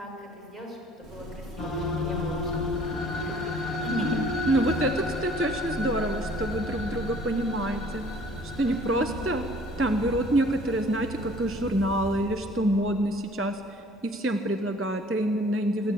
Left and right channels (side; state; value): both; normal; correlation 0.54